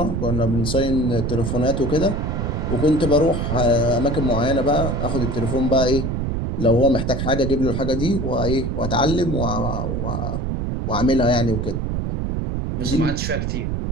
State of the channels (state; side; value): noise; right; rumble, 1 dB below the sound